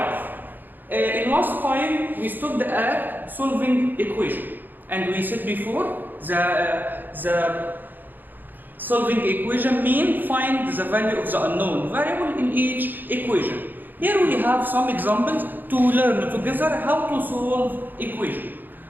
In last time we stopped at solving equation, and we said before the solving equation means find the value of the unknown variable in each equation. Here we have some examples to learn together how to solve equation.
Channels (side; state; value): left; late; 0.089 ms